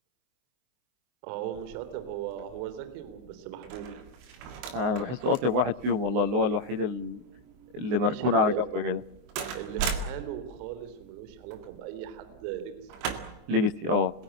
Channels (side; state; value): left; late; 24 ms